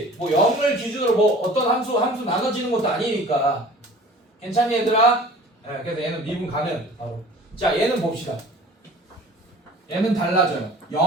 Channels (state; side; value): normal; both; correlation 0.45